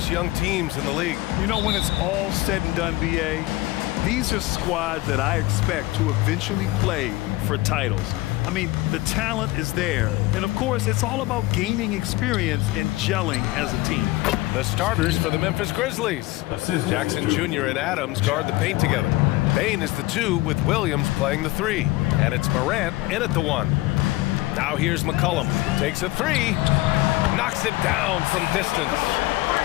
young teams in the league. You know, when it's all said and done, BA, these are squads that I expect to eventually play for titles. I mean, the talent is there. And of course, it's all about gaining experience and gelling as a team. The starters for the Memphis Grizzlies. Jackson Jr. and Adams guard the paint together. Bain is the 2 with Williams playing the 3. And it's Morant in at the 1. Now here's McCollum. Takes a 3. Knocks it down from distance.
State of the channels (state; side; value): quieter; right; 19.5 dB